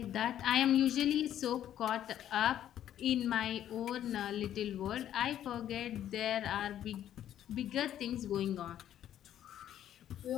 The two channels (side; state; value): right; quieter; 11.1 dB